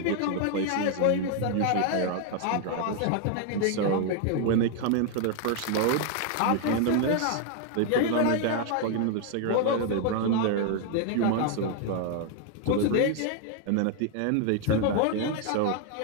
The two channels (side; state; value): both; different; correlation 0.00